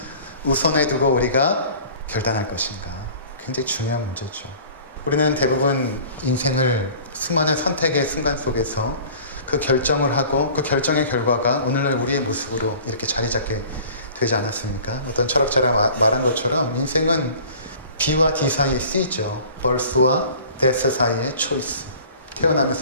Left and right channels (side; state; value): both; inverted; correlation -0.46